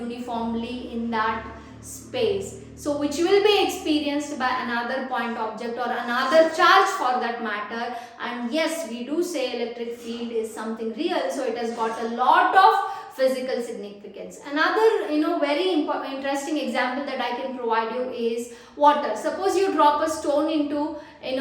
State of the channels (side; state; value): both; identical; correlation 1.00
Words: in that space. So which will be experienced by another point object or another charge for that matter. And yes, we do say electric field is something real. So it has got a lot of physical significance. Another very interesting example that I can provide you is water. Suppose you drop a stone into